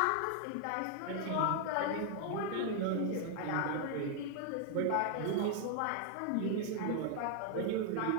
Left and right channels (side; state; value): both; different; correlation 0.00